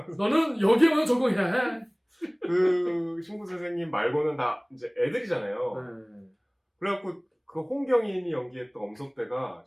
너는 여기에만 적응해야 해. 그 신구 선생님 말고는 다 이제 애들이잖아요. 그래갖고 그 홍경인이 연기했던 엄석대가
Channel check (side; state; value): both; identical; correlation 1.00